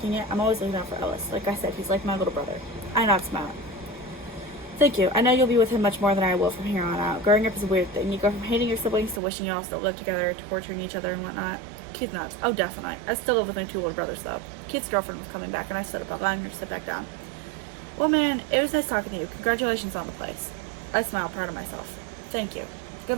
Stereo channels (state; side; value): drops out; left; at 9.2 s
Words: it, I'm always looking out for Ellis. Like I said, he's like my little brother. I nod, smile. Thank you. I know you'll be with him much more than I will from here on out. Growing up is a weird thing. You go from hating your siblings to wishing you all still live together, torturing each other and whatnot. Keith nods. Oh, definitely. I still live with my two older brothers, though. Keith's girlfriend was coming back, and I stood up, allowing her to sit back down. Well, man, it was nice talking to you. Congratulations on the place. I smiled, proud of myself. Thank you.